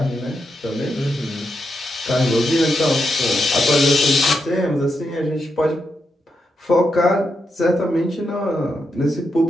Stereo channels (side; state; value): both; normal; correlation 0.83